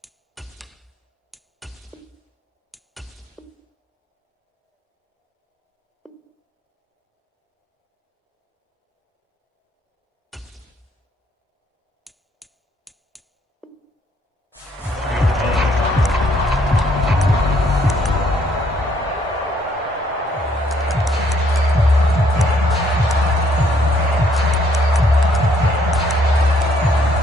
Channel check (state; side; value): normal; both; correlation 0.67